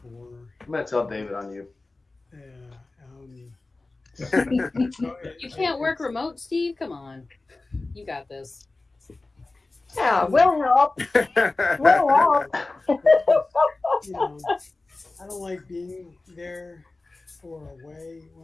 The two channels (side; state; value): right; quieter; 3.3 dB